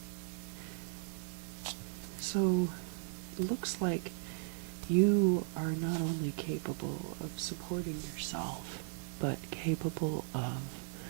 So it looks like you are not only capable of supporting yourself, but capable of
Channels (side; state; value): left; silent; 53 dB below the other